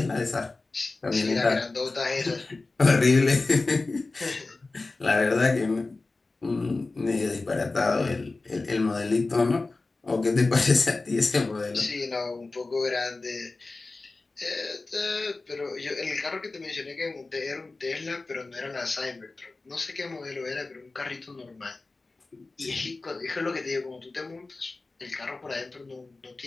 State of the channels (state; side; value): quieter; right; 3.5 dB